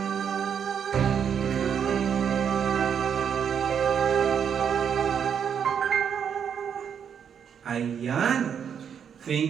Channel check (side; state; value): left; quieter; 7.8 dB